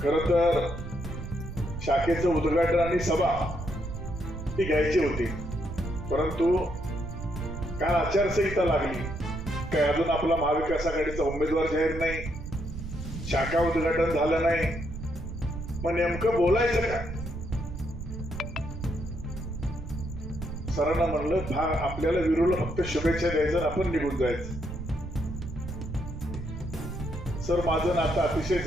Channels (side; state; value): right; noise; rumble, 8 dB below the sound